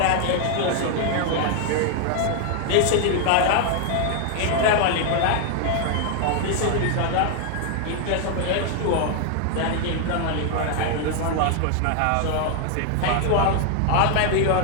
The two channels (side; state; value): both; different; correlation 0.00